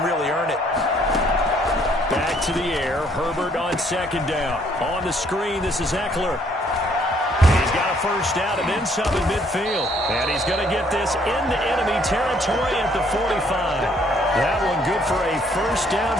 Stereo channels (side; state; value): both; normal; correlation 0.65